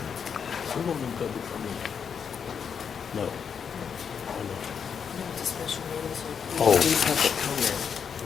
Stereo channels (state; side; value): quieter; right; 6.9 dB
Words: won't do public comment. No. Why not? No, it's a special meeting, so we Oh. can do public comment.